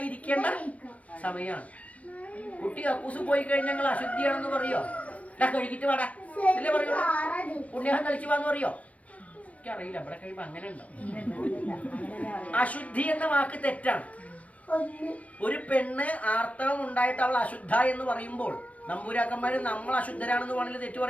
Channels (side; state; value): right; late; 0.066 ms